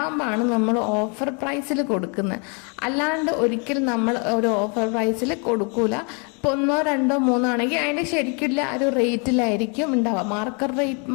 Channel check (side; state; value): right; quieter; 35.6 dB